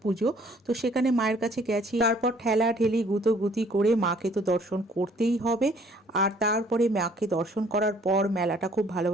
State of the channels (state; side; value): normal; both; correlation 0.59